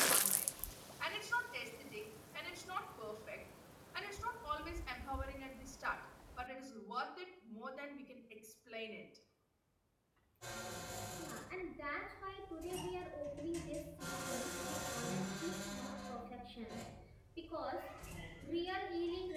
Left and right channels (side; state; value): both; identical; correlation 1.00